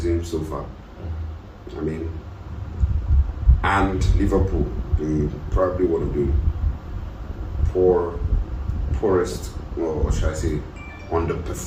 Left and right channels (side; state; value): both; identical; correlation 1.00